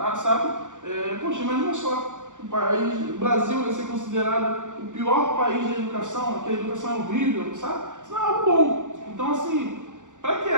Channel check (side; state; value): left; late; 0.86 ms